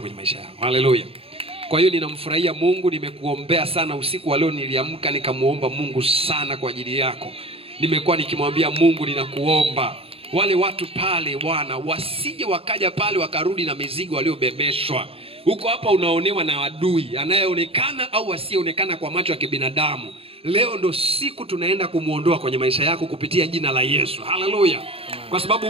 kwenye maisha yako. Haleluya. Kwa hiyo ninamfurahia Mungu, nimekuombea sana usiku wa leo, niliamka nikamuomba Mungu sana kwa ajili yako. Nimekuwa nikimwambia Mungu, ninakuomba wale watu pale Bwana wasije wakaja pale wakarudi na mizigo waliobebeshwa. Huko hapa unaonewa na adui anayeonekana au asiyeonekana kwa macho ya kibinadamu. Leo ndo siku tunaenda kumuondoa kwenye maisha yako kupitia jina la Yesu. Haleluya. Kwa sababu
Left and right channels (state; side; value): late; left; 0.27 ms